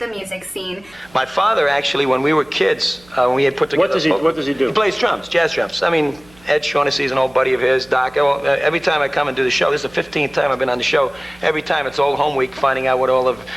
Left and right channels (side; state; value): right; noise; hum, 27 dB below the sound